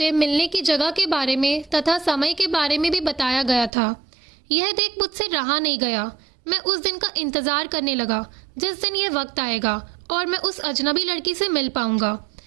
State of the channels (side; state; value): left; drops out; at 3.7 s